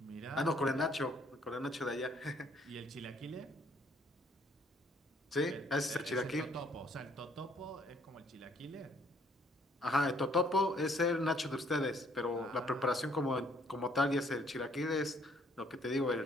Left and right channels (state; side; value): normal; both; correlation 0.64